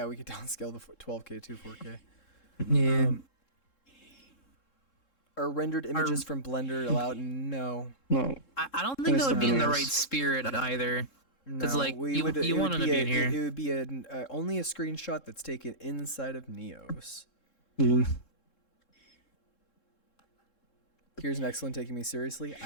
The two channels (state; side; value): late; right; 3.7 ms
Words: we could downscale the 12K to 4K. Yeah. Are rendered images from Blender allowed? No. No. I don't think that would be in the right spirit either. Because No, like you want them to be in here. It would be only a screenshot that's taken inside of Neos. Yeah. Here's an excellent taking me seriously.